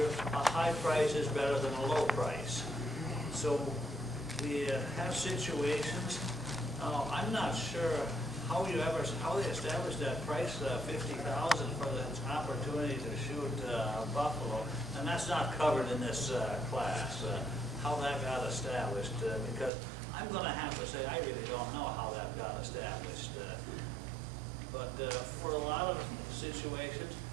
a high price is better than a low price. So we have situations. I'm not sure how they established that price, $50,000 for the opportunity to shoot buffalo, and that's not covered in this class. How that got established, because I'm going to have to say I really don't know how that got established. But for a lot of situations,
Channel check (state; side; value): drops out; left; at 19.7 s